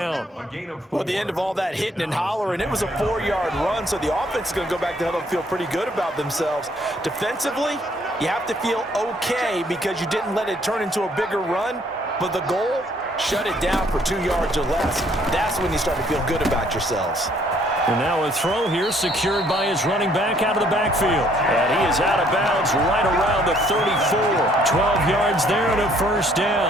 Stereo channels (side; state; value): both; normal; correlation 0.64